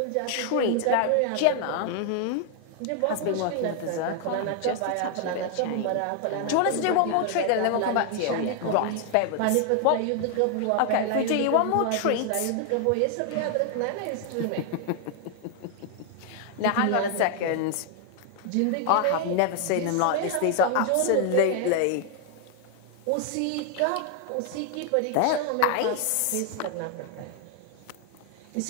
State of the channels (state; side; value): different; both; correlation 0.00